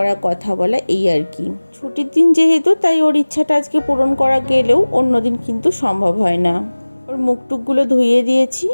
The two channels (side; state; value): both; inverted; correlation -1.00